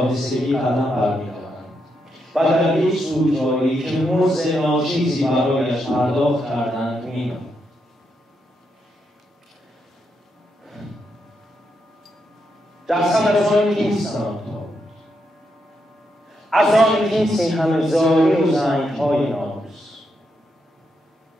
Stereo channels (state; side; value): normal; both; correlation 0.81